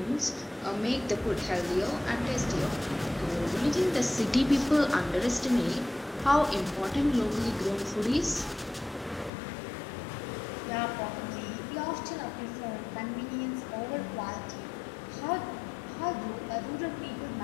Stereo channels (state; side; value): drops out; right; at 9.3 s